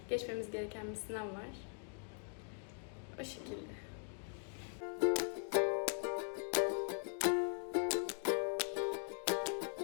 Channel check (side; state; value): right; silent; 50 dB below the other